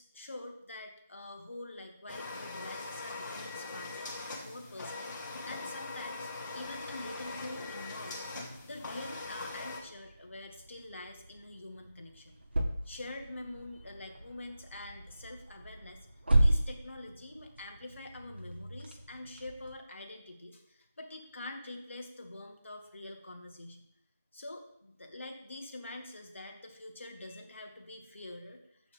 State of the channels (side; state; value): both; inverted; correlation -0.89